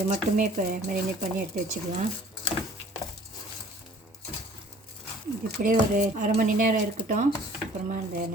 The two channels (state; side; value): normal; both; correlation 0.51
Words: மட்டுமே இப்போ மேரினேட் பண்ணி எடுத்து வச்சுக்கலாம். இது இப்படியே ஒரு அரை மணி நேரம் இருக்கட்டும். அப்புறமா இந்த